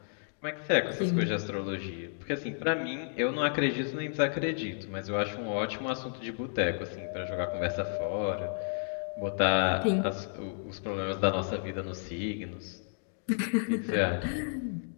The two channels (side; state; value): right; silent; digital silence